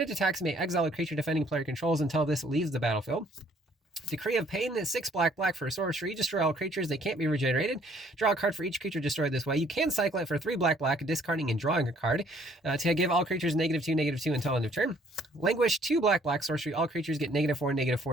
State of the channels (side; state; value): both; normal; correlation 0.62